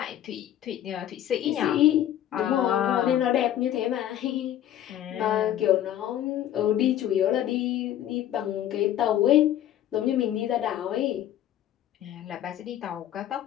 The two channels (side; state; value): right; quieter; 11.6 dB